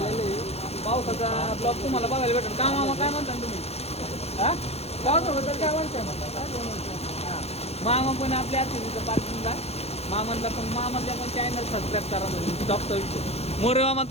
आहे. पावसाचा ब्लॉग तुम्हाला बघायला भेटेल का मामा? काय म्हणता तुम्ही? हा, पावसाबद्दल काय म्हणता? हां, मामा पण आपल्या तिथं पार्किंगला मामांना पण मामाच्या पण चॅनल सबस्क्राईब करा. म्हणजे टॉपचा विषय मोरे मामा,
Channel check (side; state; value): right; late; 0.30 ms